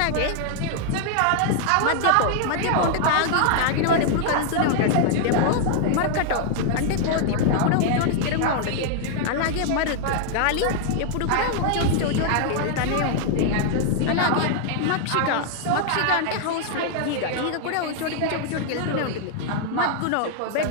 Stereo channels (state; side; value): different; both; correlation 0.00